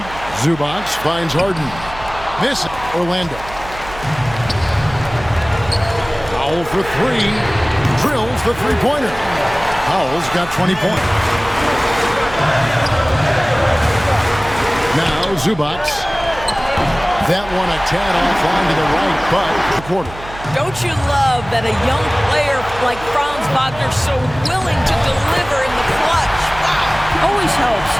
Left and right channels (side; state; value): right; noise; hum, 15 dB below the sound